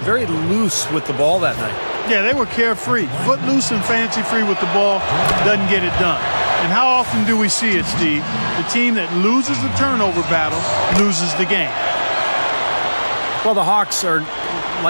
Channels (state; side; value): inverted; both; correlation -1.00